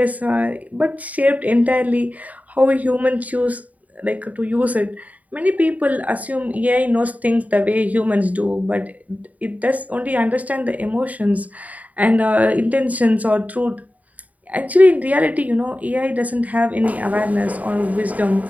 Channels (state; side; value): late; left; 0.072 ms